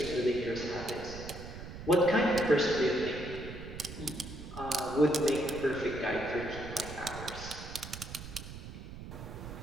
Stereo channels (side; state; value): right; noise; rumble, 11 dB below the sound